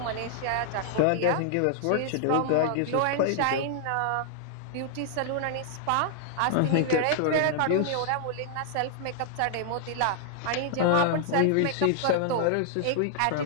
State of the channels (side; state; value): both; different; correlation -0.01